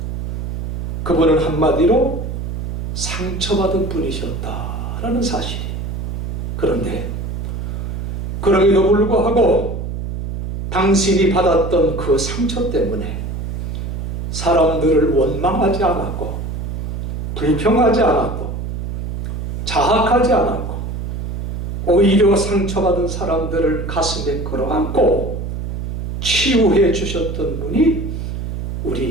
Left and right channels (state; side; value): noise; right; hum, 4 dB below the sound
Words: 그분은 한마디로 상처받은 분이셨다라는 사실이. 그런데 그럼에도 불구하고 당신이 받았던 그 상처 때문에 사람들을 원망하지 않았고, 불평하지 않았고, 자학하지 않았고, 오히려 상처받은 사람들을 가슴에 끌어안고 치유해 주셨던 분이